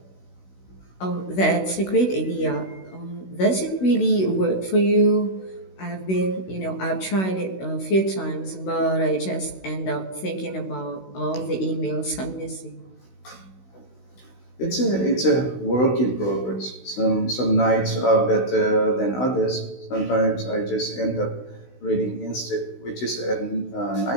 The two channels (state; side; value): late; right; 16 ms